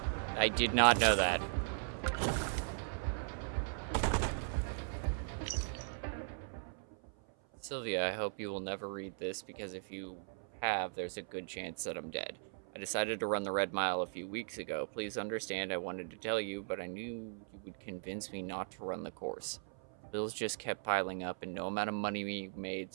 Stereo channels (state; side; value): silent; left; 52 dB below the other